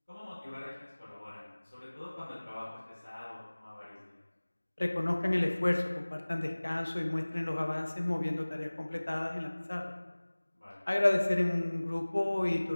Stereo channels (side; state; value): both; inverted; correlation -1.00